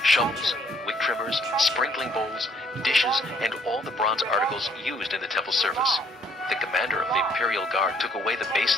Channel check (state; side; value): normal; both; correlation 0.64